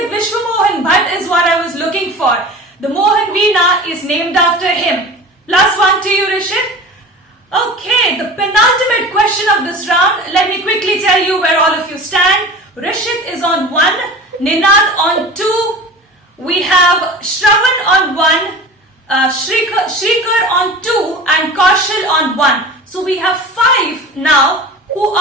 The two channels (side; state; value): both; normal; correlation 0.36